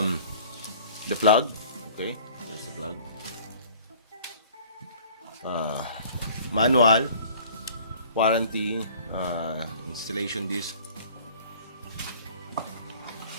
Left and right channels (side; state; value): both; inverted; correlation -0.49